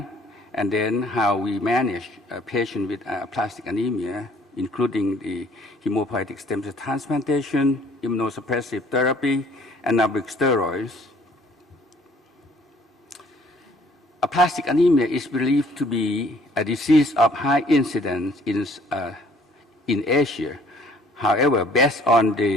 and then how we manage a patient with aplastic anemia, including the hematopoietic stem cell transplantation, immunosuppressive therapy, anabolic steroids. Aplastic anemia is believed to be a disease of high incidence in Asia. However, based on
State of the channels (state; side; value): normal; both; correlation 0.58